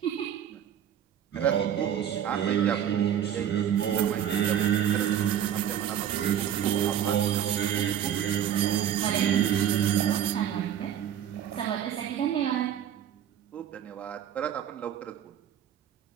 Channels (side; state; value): left; quieter; 9.7 dB